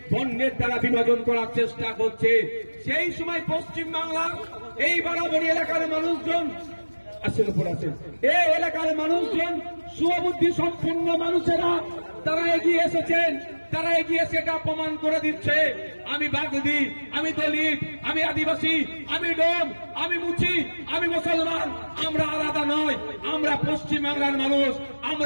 বর্ণের দ্বারা বিভাজন করার চেষ্টা করছে। সেই সময় পশ্চিম বাংলার এই বারাবণী এলাকার মানুষজন এই এলাকার মানুষজন সুবুদ্ধি সম্পন্ন মানুষেরা তারা এগিয়ে এসেছেন। তারা এগিয়ে সেটা প্রমাণ করে দিচ্ছে। আমি বাগদি, আমি দলিত, আমি আদিবাসী, আমি ডোম, আমি মুচি, আমি মুসলমান, আমরা আলাদা নয়। আমরা পশ্চিম বাংলার মানুষ।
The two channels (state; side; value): inverted; both; correlation -1.00